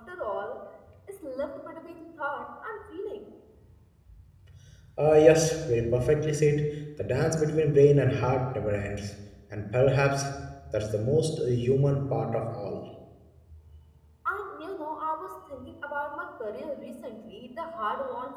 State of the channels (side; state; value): both; identical; correlation 1.00